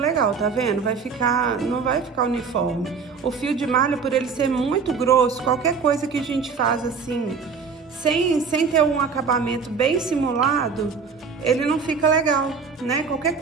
tá vendo? Vai ficar... Não vai ficar uniforme. O fio de malha, por ele ser muito grosso, qualquer coisa que a gente faz assim, sem ter um acabamento bem simulado, ele não fica legal, né? Qualquer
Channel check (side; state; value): left; quieter; 5.4 dB